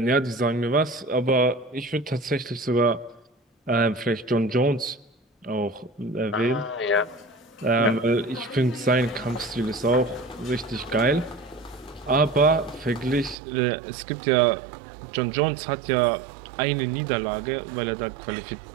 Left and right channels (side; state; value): left; drops out; at 13.4 s